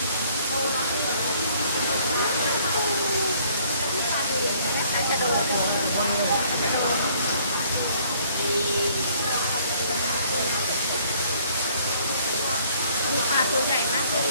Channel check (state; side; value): inverted; both; correlation -0.61